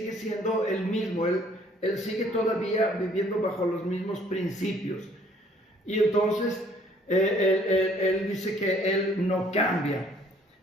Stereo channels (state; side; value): normal; both; correlation 0.60